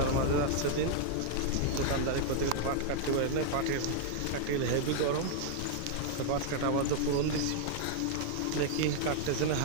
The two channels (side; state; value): both; different; correlation -0.01